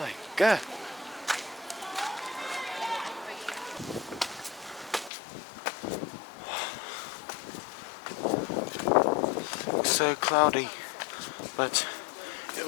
god. Looks so cloudy, but it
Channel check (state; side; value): drops out; right; at 5.1 s